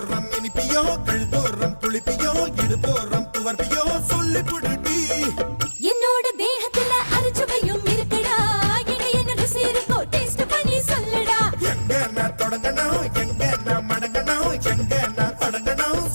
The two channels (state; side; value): inverted; both; correlation -1.00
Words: போடுறோம் இனிப்பியோ கழுதோறும் புளிப்பியோ இடுபோறும் துவர்ப்பியோ சொல்லி புடுடி என்னோட தேகத்துல அரிச்சுவையும் இருக்குடா என்ன ருசி இருக்கோ டேஸ்ட் பண்ணி சொல்லுடா எங்க நான் தொடங்கணும் எங்க நான் மடங்கணும் எங்க நான் தொடங்கணும்